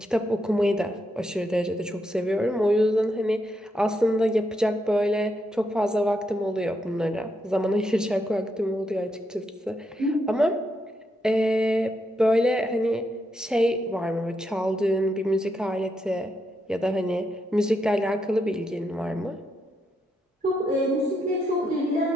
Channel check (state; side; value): normal; both; correlation 0.81